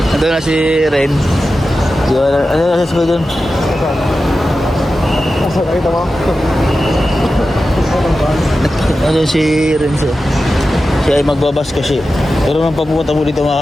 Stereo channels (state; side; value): normal; both; correlation 0.93